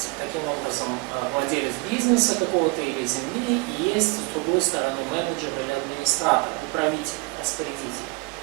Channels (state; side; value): quieter; left; 28.3 dB